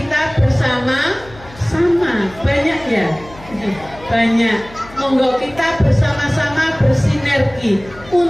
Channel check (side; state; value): left; noise; hum, 20 dB below the sound